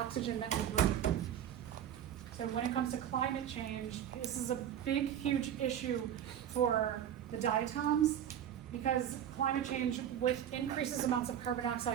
that we breathe. So when it comes to climate change, this is a big, huge issue for the diatoms, because climate change with increases amounts of carbon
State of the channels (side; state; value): left; quieter; 10.0 dB